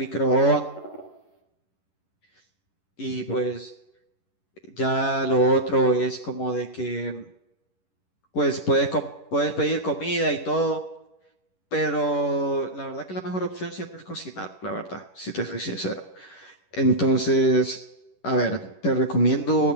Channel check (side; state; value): right; late; 11 ms